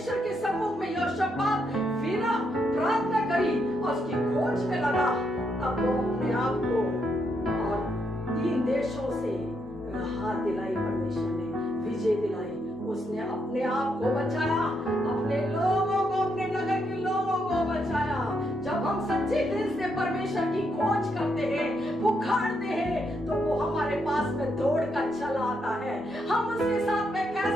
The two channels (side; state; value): both; normal; correlation 0.78